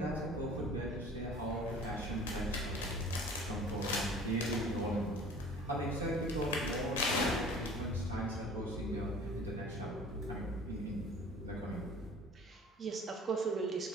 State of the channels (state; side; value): normal; both; correlation 0.46